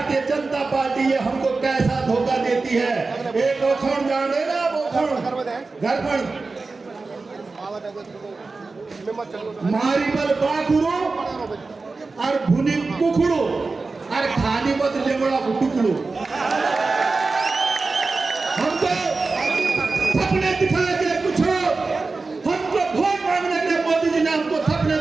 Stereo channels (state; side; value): quieter; left; 3.9 dB